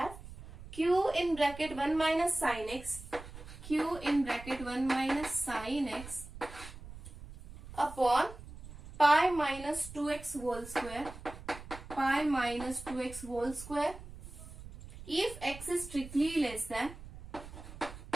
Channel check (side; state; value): right; noise; rumble, 14 dB below the sound